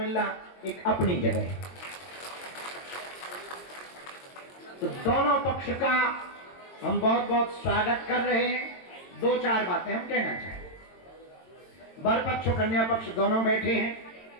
एक अपनी जगह है। तो दोनों पक्ष का हम बहुत बहुत स्वागत कर रहे हैं। 2-4 बातें हम कहना चाहें। वर पक्ष और कन्या पक्ष दोनों बैठे हैं।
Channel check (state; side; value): late; right; 22 ms